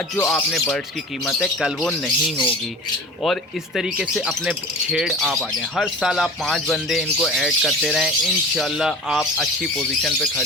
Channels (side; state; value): both; normal; correlation 0.36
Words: जो आपने बर्ड्स की कीमत है कल वो नहीं होगी। और इस तरीके से अपने छेड़ आप आ जाएँ। हर साल आप 5 बंदे इनको ऐड करते रहें, इंशाल्लाह आप अच्छी पोजीशन पे